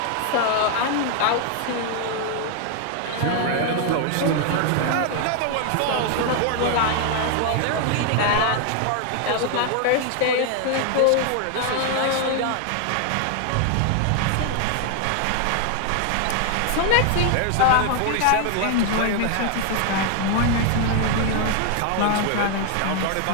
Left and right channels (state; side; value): different; both; correlation 0.00